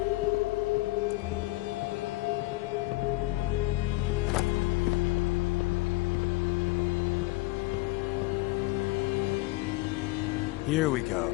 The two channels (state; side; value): quieter; right; 20.1 dB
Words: Here we go.